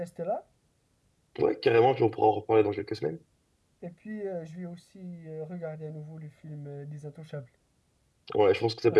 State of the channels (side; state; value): both; identical; correlation 1.00